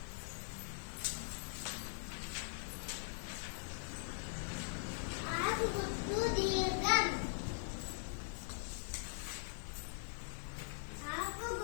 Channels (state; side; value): silent; right; digital silence